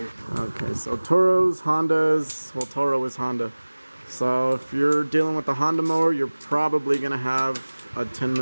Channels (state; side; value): inverted; both; correlation -1.00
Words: Okay, so Toros, Hondas. Well, Toro is Honda. So if you're dealing with the Honda mower, you're probably gonna have a